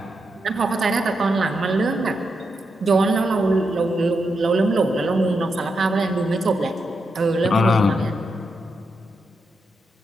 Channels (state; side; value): normal; both; correlation 0.85